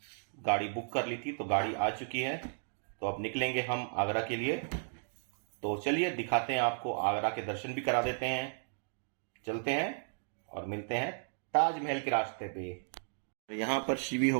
गाड़ी बुक कर ली थी तो गाड़ी आ चुकी है। तो अब निकलेंगे हम आगरा के लिए। तो चलिए दिखाते हैं आपको, आगरा के दर्शन भी करा देते हैं। चलते हैं और मिलते हैं ताजमहल के रास्ते पे। यहाँ पर शिवी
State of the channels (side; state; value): left; silent; digital silence